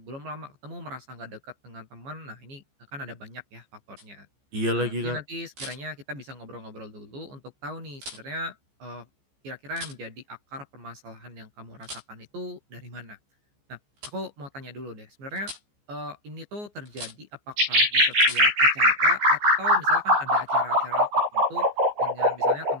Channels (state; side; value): late; left; 14 ms